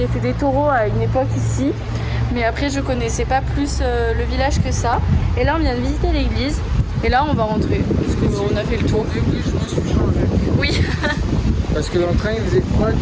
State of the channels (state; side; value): identical; both; correlation 1.00